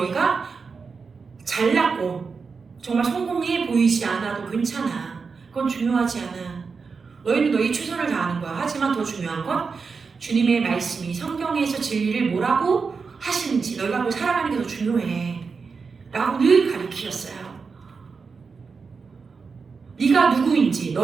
잘났고 정말 성공해 보이지 않아도 괜찮아. 그건 중요하지 않아. 너희는 너희 최선을 다하는 거야. 하지만 더 중요한 건 주님의 말씀이 성경에서 진리를 뭐라고 하시는지 너희가 뭐 살아가는 게 더 중요해 라고 늘 가르치셨어요. 네가 누구인지,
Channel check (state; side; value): quieter; left; 5.0 dB